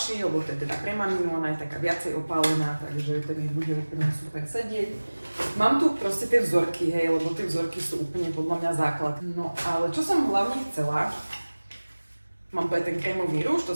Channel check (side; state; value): both; inverted; correlation -1.00